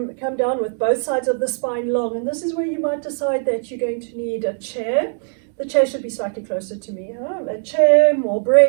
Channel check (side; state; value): left; silent; digital silence